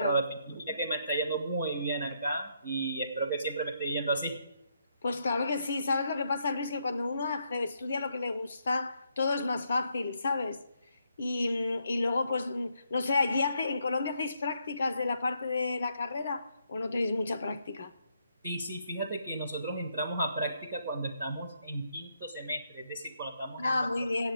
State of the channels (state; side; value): inverted; both; correlation -0.76